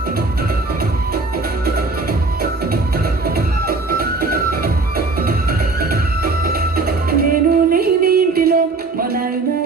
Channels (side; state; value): left; quieter; 3.7 dB